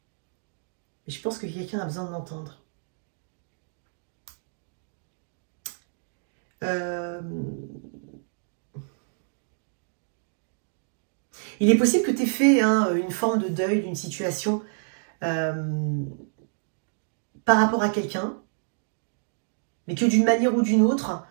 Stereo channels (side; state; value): left; silent; digital silence